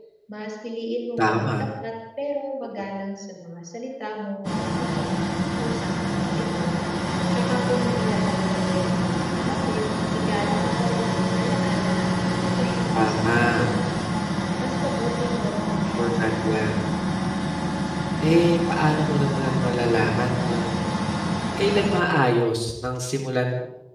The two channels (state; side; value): identical; both; correlation 1.00